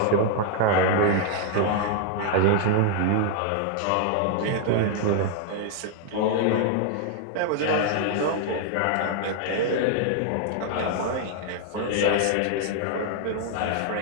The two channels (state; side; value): different; both; correlation 0.00